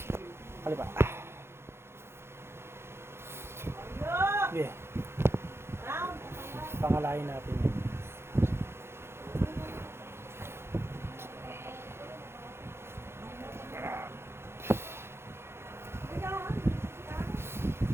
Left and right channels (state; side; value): late; left; 0.12 ms